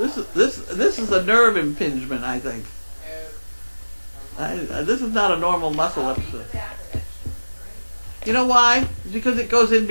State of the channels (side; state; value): both; inverted; correlation -1.00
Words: is a nerve impingement, I think. This is not a normal muscle I'll read the episode. back of it. You know why? Because it goes in